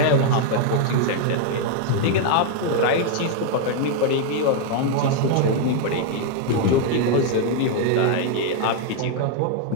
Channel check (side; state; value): both; different; correlation 0.00